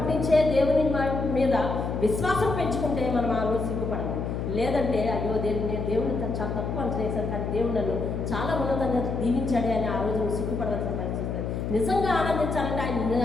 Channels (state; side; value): noise; left; hum, 3 dB below the sound